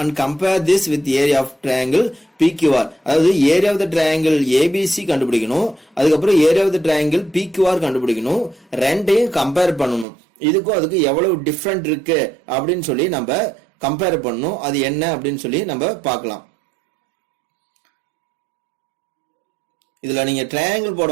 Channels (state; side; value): drops out; left; at 10.1 s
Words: and compare this with the area of triangle PQR. அதாவது area of the triangle ABC கண்டுபிடிக்கணும், அதுக்கப்புறம் area of the triangle PQR கண்டுபிடிக்கணும், ரெண்டையும் compare பண்ணணும். இதுக்கும் அதுக்கு எவ்வளவு டிஃபரண்ட் இருக்கு அப்படின்னு சொல்லி நம்ம கம்பேர் பண்ணணும். அது என்ன அப்படின்னு சொல்லி நம்ம பார்க்கலாம். இதுல நீங்க ட்ரையாங்கிள்